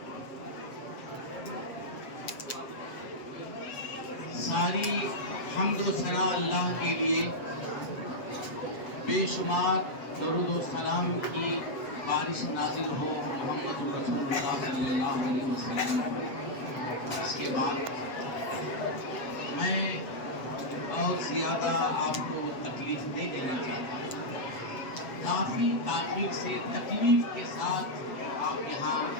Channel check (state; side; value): late; right; 7.6 ms